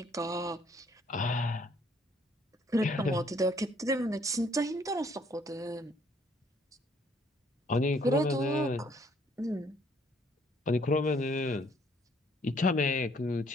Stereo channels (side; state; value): both; normal; correlation 0.64